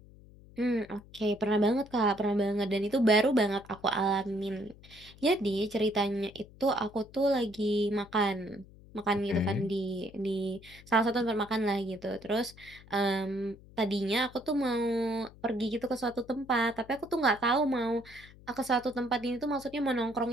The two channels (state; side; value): noise; left; hum, 22 dB below the sound